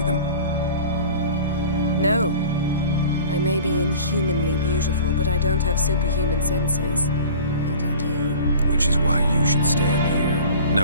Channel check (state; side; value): inverted; both; correlation -0.42